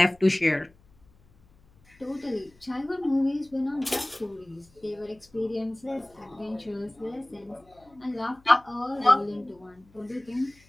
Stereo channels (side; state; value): left; noise; hum, 30 dB below the sound